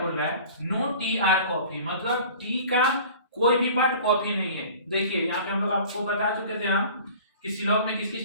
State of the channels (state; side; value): inverted; both; correlation -0.44